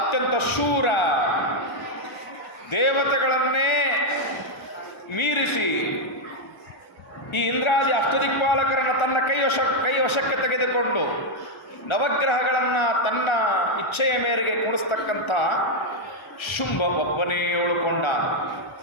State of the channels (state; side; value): late; right; 1.3 ms